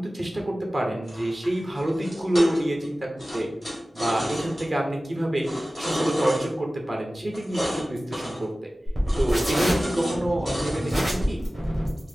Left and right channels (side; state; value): both; normal; correlation 0.97